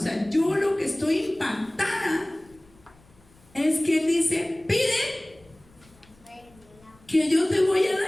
yo lo que estoy impactada es que Él dice, pide que yo te voy a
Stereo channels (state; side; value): noise; left; rumble, 29 dB below the sound